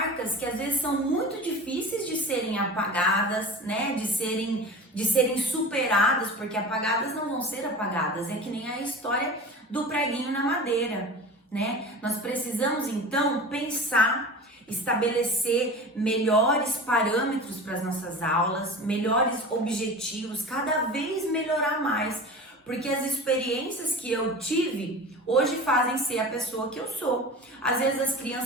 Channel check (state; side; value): normal; both; correlation 0.34